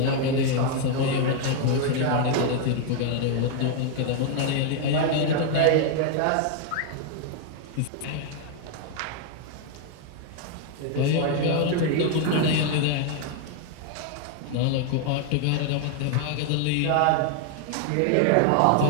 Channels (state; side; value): different; both; correlation 0.00